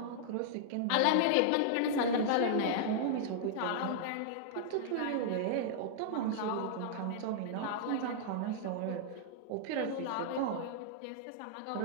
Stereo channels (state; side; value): different; both; correlation -0.01